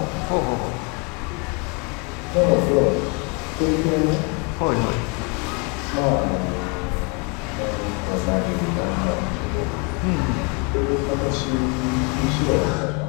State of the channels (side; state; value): right; quieter; 32.4 dB